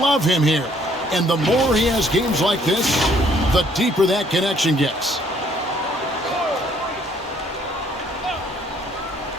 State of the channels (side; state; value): both; normal; correlation 0.64